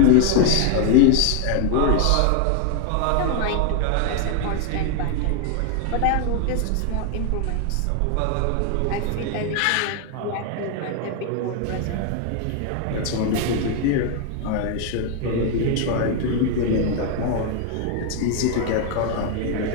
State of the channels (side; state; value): both; different; correlation 0.00